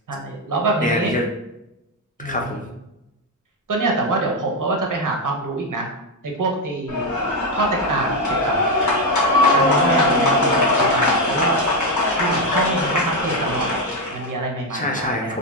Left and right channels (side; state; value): both; normal; correlation 0.06